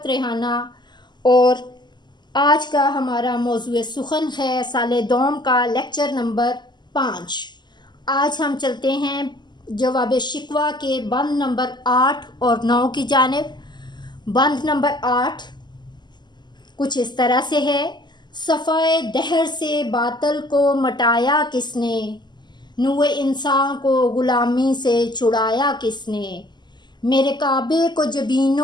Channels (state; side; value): late; right; 0.21 ms